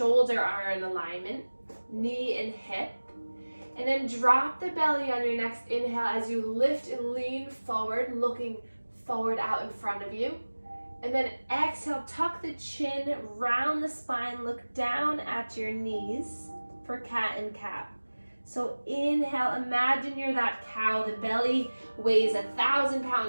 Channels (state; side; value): inverted; both; correlation -1.00